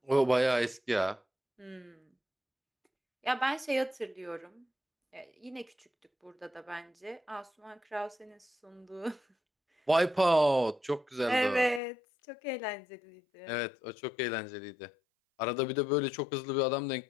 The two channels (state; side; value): drops out; right; at 11.8 s